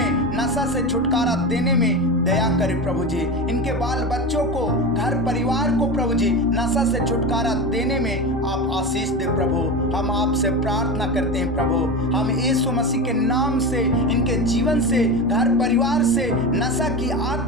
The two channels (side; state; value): both; normal; correlation 0.23